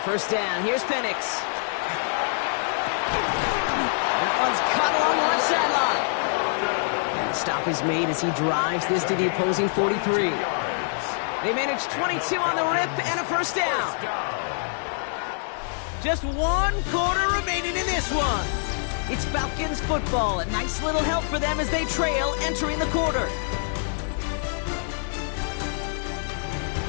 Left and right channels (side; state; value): right; silent; digital silence